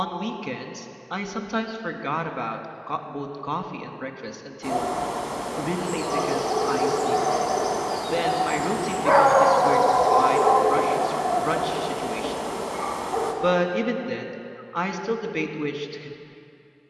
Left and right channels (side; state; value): both; identical; correlation 1.00